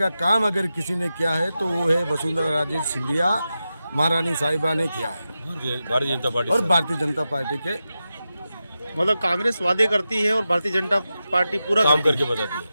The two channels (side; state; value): both; inverted; correlation -0.92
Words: काम अगर किसी ने किया है तो वो है वसुंधरा राजे सिंधिया महारानी साहिबा ने किया है। भारतीय जनता पार्टी और भारतीय जनता पार्टी के मतलब कांग्रेस वादे करती है और भारतीय जनता पार्टी पूरा काम करके बताती